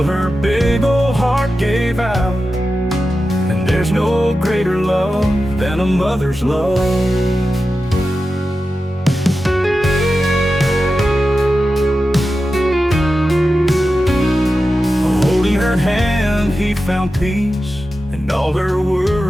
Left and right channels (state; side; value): normal; both; correlation 0.92